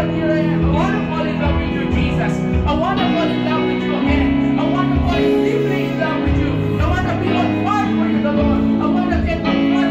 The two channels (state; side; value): identical; both; correlation 1.00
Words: here I am. I want to fall in love with you, Jesus. I want to fall in love with you again. I want to fall deeply in love with you. I want to be on fire for you, the Lord. I want to get on